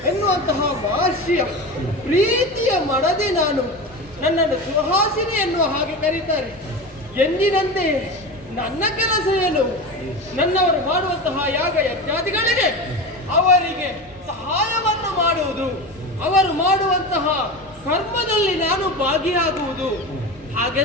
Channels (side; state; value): both; normal; correlation 0.26